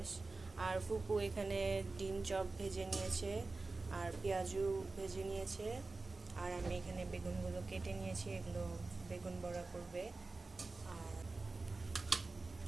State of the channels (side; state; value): left; quieter; 3.6 dB